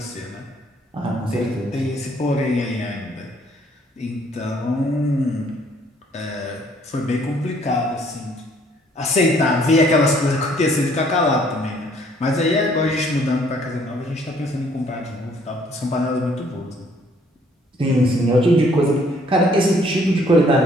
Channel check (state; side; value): normal; both; correlation 0.62